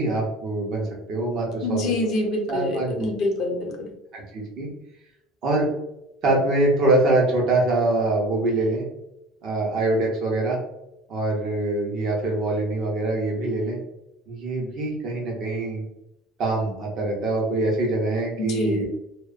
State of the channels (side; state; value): both; normal; correlation 0.41